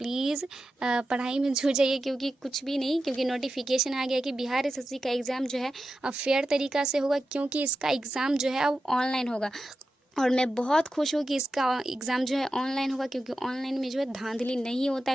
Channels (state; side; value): normal; both; correlation 0.91